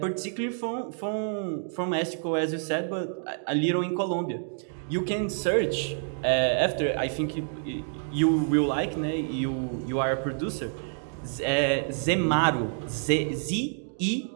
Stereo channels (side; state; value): left; silent; digital silence